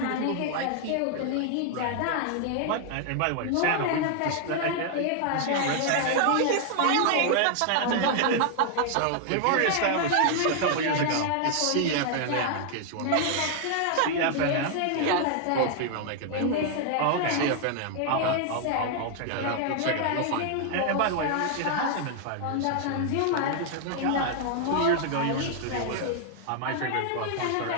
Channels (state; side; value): different; both; correlation 0.00